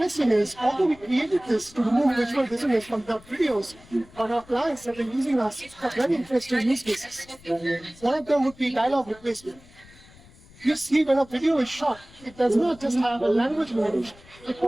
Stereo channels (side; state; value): left; noise; rumble, 24 dB below the sound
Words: is, although we created this to remove visual dissonance from dub videos, but our clients have been using us for very interesting use cases. One of them would be dialogue replacement. You see, when a video is shot, it does not just have a language variation, it